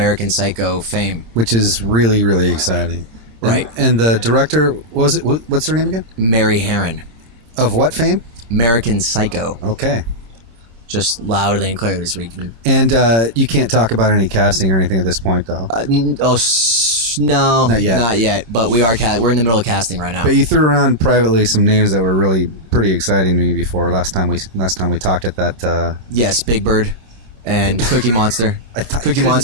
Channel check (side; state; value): left; late; 26 ms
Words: Psycho fame, which is really, really exciting. Right. And the director, what's her name again? Mary Herron. Of what fame? American Psycho. Okay. Just loudly and clearly so we can... And you can't talk about any casting or anything at this point, though? No. Not yet. Not yet, but we're in the middle of casting right now. But you threw around privately some names that were really pretty exciting to me before. Last time we talked at that... Yes, Big Bird and Cookie Monster. Cookie